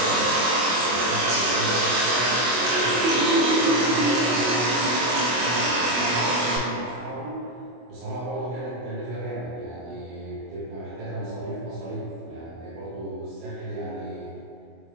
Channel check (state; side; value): late; left; 24 ms